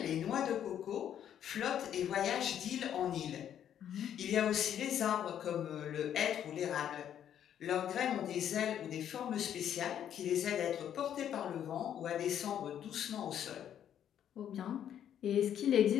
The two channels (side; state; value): right; quieter; 9.9 dB